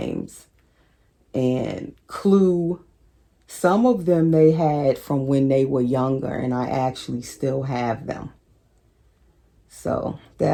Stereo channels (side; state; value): both; identical; correlation 1.00